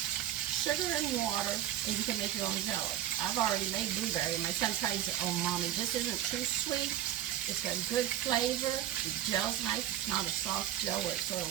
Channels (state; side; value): quieter; left; 12.2 dB